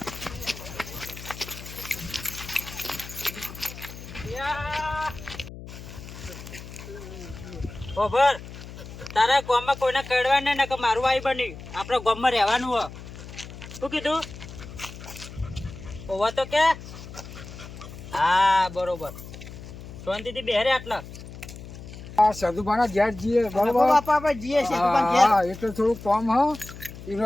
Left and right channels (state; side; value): noise; left; hum, 13 dB below the sound